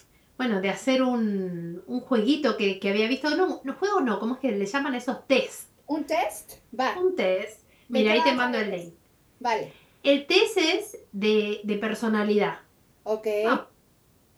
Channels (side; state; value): both; identical; correlation 1.00